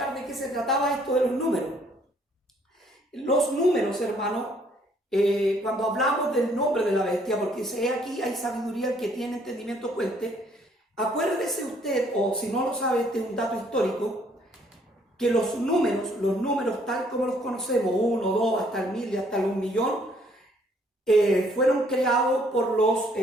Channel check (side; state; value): both; normal; correlation 0.64